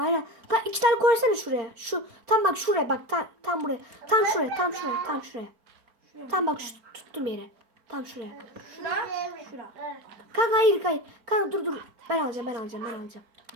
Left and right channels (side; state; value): left; late; 4.5 ms